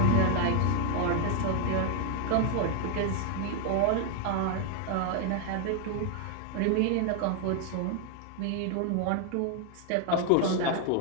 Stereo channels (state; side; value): different; both; correlation 0.00